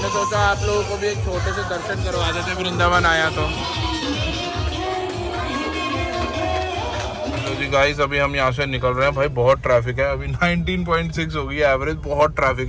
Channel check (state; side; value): identical; both; correlation 1.00